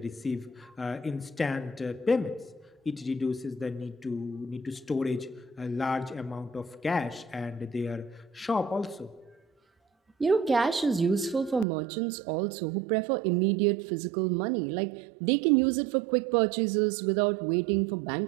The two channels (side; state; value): left; drops out; at 11.7 s